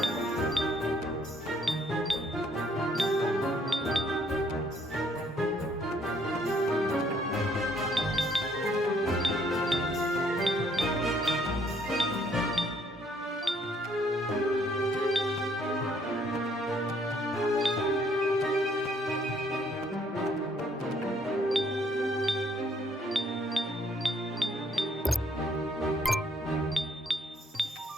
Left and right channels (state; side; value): normal; both; correlation 0.65